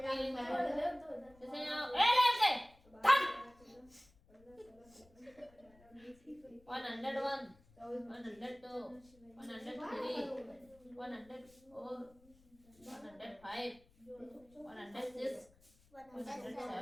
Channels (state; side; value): noise; left; rumble, 28 dB below the sound